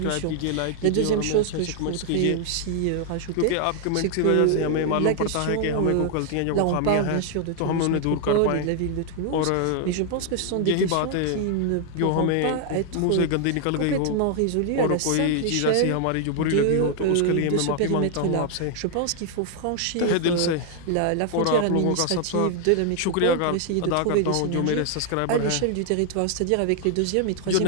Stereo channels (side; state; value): both; different; correlation 0.00